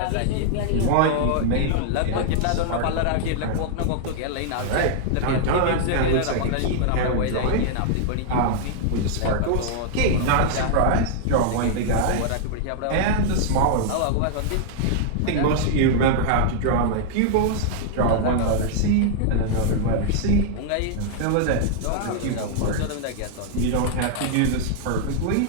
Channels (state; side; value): different; both; correlation -0.01